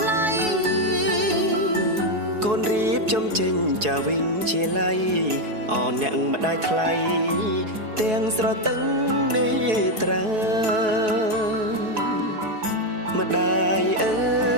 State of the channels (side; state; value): left; late; 4.7 ms